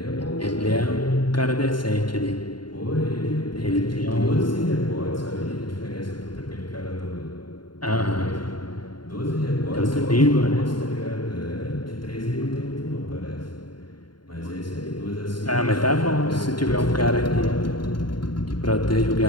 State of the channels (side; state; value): right; late; 0.72 ms